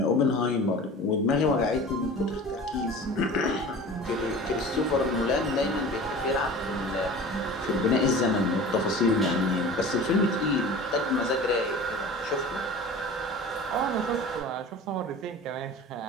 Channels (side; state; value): both; normal; correlation 0.38